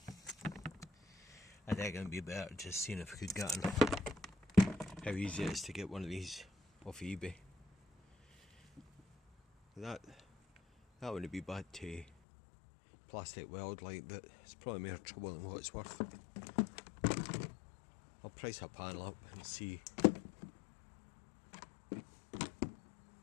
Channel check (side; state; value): right; drops out; at 12.1 s